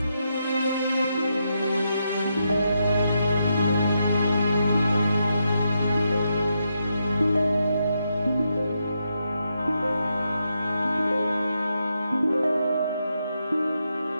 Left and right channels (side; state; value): both; inverted; correlation -0.83